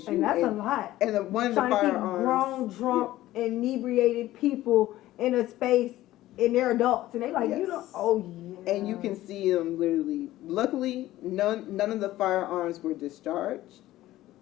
And that's a lot. And one of the Trying to keep firearms, grown, drunk, inebriated people in a space, and they're adults, and they like, Yes. you know, oh yeah. and you can see them literally. Luckily, none of the firearms were discharged,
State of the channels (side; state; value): right; quieter; 15.4 dB